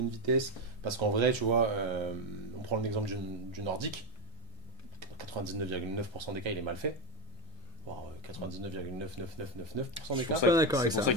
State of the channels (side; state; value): both; normal; correlation 0.08